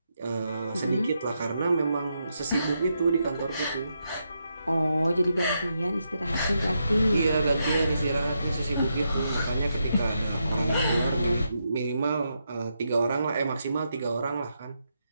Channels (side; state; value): both; inverted; correlation -0.82